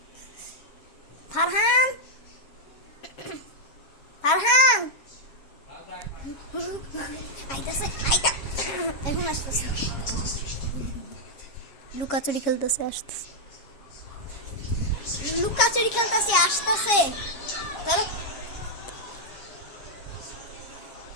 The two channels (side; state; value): right; late; 7.3 ms